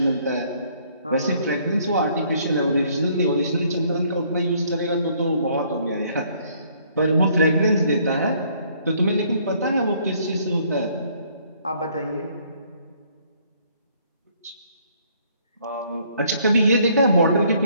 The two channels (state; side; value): inverted; both; correlation -0.64